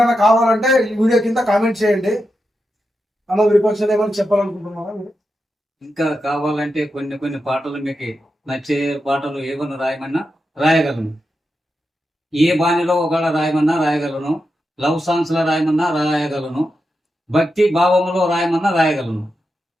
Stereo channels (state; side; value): normal; both; correlation 0.88